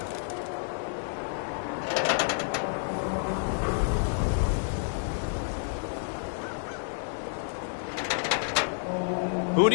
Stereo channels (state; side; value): silent; right; digital silence